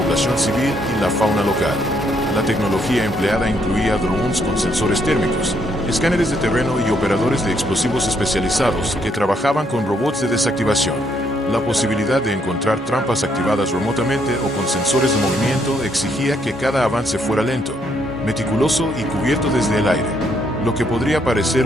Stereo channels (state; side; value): normal; both; correlation 0.73